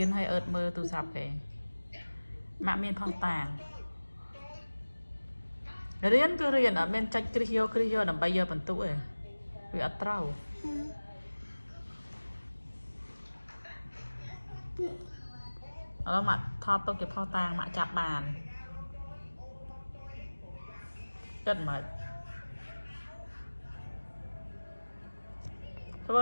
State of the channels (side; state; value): both; inverted; correlation -1.00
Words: hay ớt mơ tụ sạp kì. Mạ miên phong tàng. Riêng cứ riêng ọt men cho kri vô nằm bây giờ bằng tụ ấy. Vì ọt trâu. Đó mặt thọt tôi kịp phong tàng mạ chạp bàn. Rất mệt.